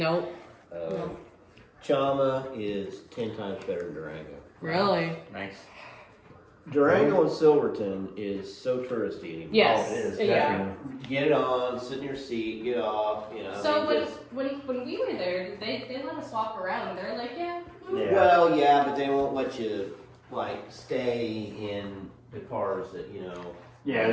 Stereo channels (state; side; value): identical; both; correlation 1.00